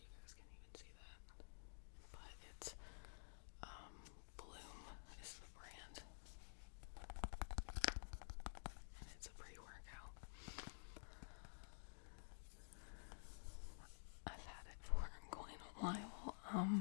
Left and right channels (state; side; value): silent; right; digital silence